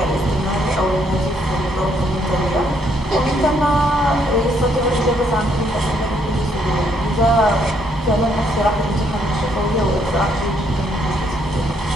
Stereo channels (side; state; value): both; normal; correlation 0.71